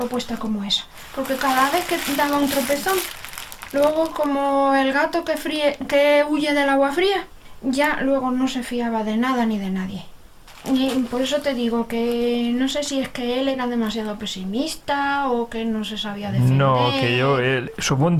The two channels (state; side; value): identical; both; correlation 1.00